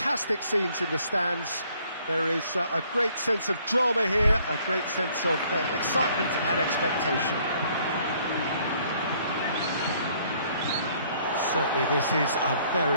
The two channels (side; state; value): both; inverted; correlation -0.62